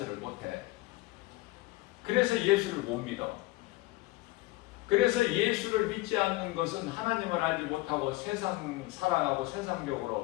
못해. 그래서 예수를 못 믿어. 그래서 예수를 믿지 않는 것은 하나님을 알지 못하고 세상 사랑하고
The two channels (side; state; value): right; quieter; 20.3 dB